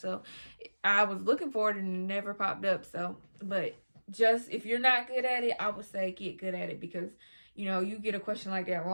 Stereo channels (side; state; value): both; inverted; correlation -1.00